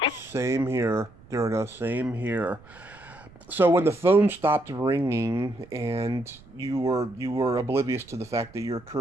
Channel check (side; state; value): right; noise; rumble, 24 dB below the sound